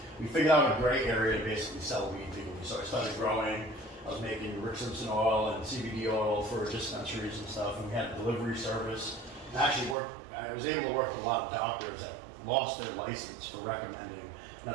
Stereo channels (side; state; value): left; drops out; at 10.0 s